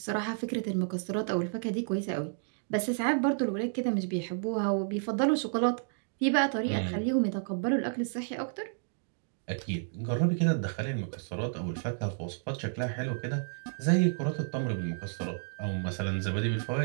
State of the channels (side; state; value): left; silent; digital silence